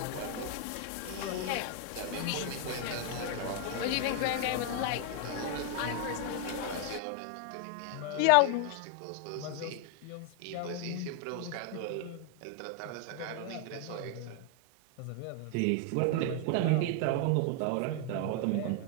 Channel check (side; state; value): both; different; correlation 0.00